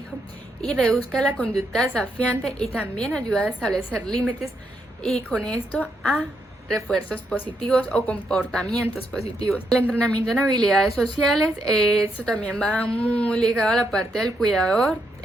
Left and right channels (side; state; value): both; normal; correlation 0.79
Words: y reduzca la conducta desafiante, y también ayuda a establecer límites y con esto a refuerzos positivos o comportamientos positivos. El entrenamiento en habilidades sociales, esto también va muy ligado a la parte del cuidador,